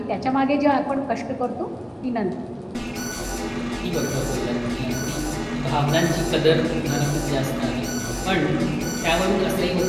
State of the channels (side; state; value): both; identical; correlation 1.00